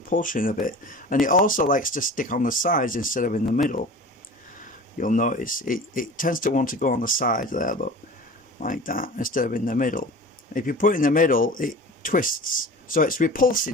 a bit. And it also likes to stick on the sides instead of in the middle. You'll notice it tends to want to go on the side there, look, like that, instead of in the middle. If you put it in the middle, it twists, so it's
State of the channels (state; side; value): normal; both; correlation 0.37